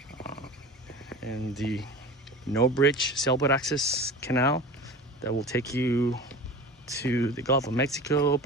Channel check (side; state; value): both; normal; correlation 0.35